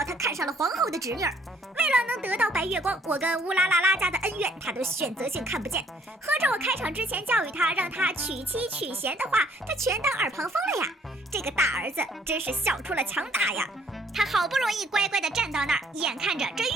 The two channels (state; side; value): normal; both; correlation 0.63